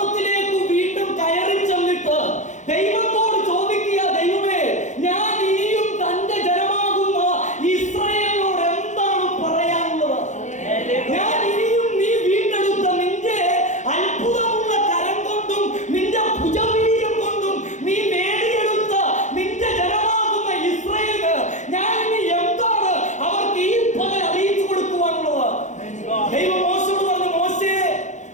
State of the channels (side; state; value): right; late; 0.35 ms